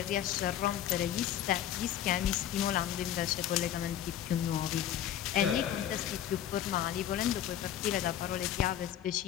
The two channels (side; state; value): right; quieter; 10.8 dB